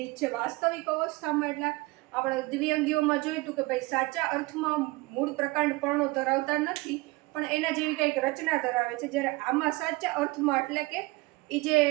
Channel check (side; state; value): left; quieter; 22.6 dB